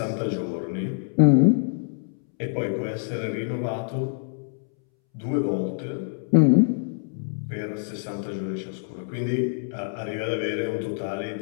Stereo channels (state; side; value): silent; right; 61 dB below the other